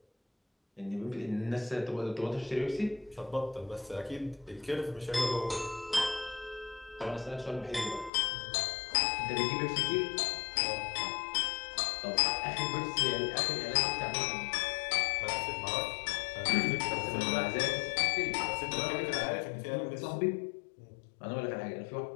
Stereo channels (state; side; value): drops out; right; at 8.1 s